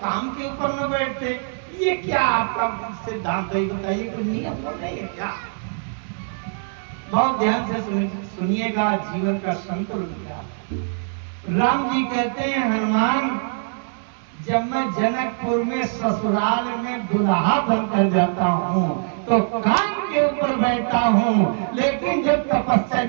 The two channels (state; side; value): silent; left; 64 dB below the other